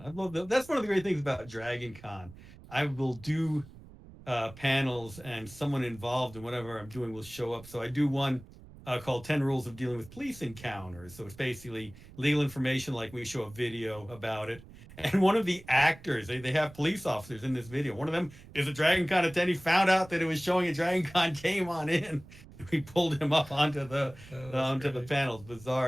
love that. That's one of the great things about Dragon Con. I will do panels, and someone involved in whatever I'm doing will show up. So I do one called 10 Rules of Dealing with Police Encounters. So it's basically legal information, like we show a video about it. And one of the actors, they have police officers in this video. One of them is a Dragon Con attendee, found out that it was showing a Dragon Con, came on in. We pulled him up onto the the panels.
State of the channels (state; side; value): noise; right; rumble, 19 dB below the sound